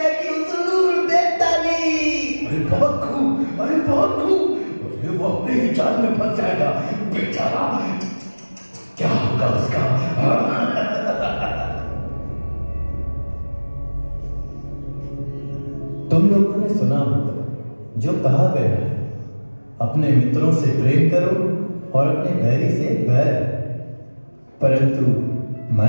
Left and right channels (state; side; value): inverted; both; correlation -1.00